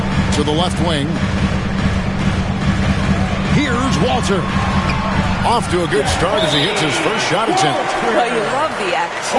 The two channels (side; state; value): both; identical; correlation 1.00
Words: To the left wing. Here's Walter. Off to a good start as he hits his first shot attempt. Well, you love the